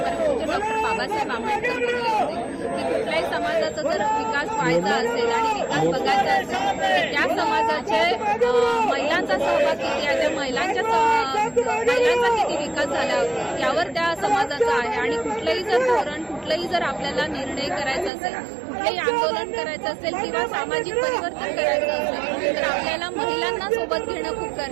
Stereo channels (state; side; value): drops out; left; at 18.1 s